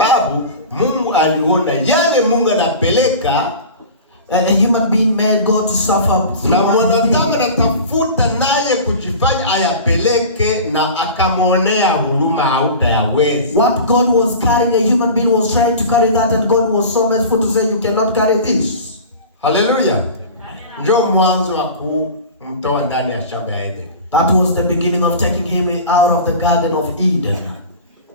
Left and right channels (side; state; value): both; inverted; correlation -0.35